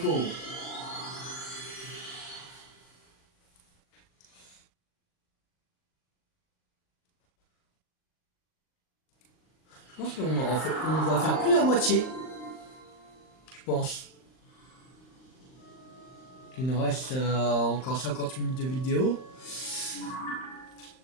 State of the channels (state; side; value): late; right; 39 ms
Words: Je pense qu'on on va faire plus la moitié. Je pense. Il nous reste encore 50 minutes de vidéo.